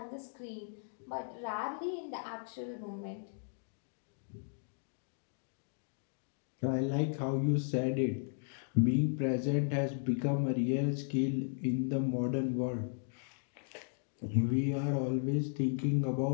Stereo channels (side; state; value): right; silent; digital silence